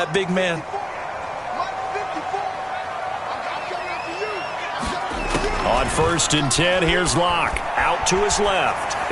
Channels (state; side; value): identical; both; correlation 1.00